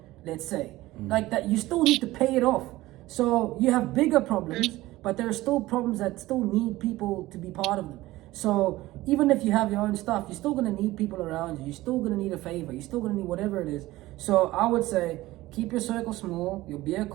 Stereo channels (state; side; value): quieter; left; 17.6 dB